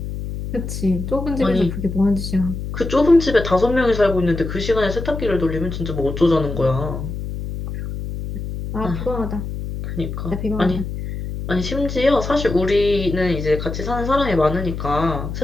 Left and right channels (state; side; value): noise; left; hum, 6 dB below the sound